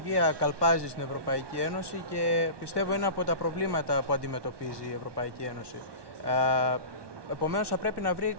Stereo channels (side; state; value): left; late; 1.2 ms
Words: καλπάζει στην Ευρωπαϊκή Ένωση και πιστεύω είναι από τα προβλήματα που αντιμετωπίζει η Ευρωπαϊκή Ένωση. Επομένως, θα πρέπει να βρει